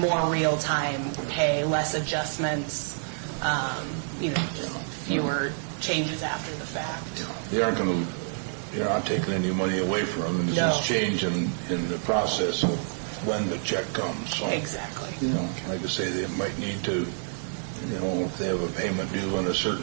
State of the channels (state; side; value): silent; left; digital silence